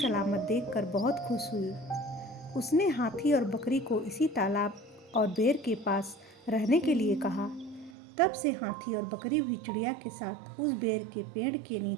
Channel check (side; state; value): left; drops out; at 8.0 s